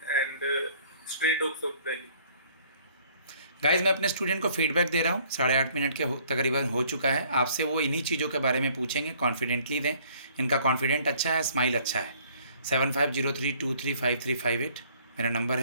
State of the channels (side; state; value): both; inverted; correlation -0.59